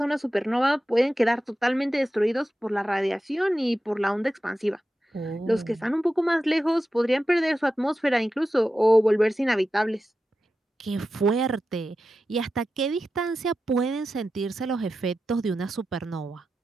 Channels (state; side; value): normal; both; correlation 0.92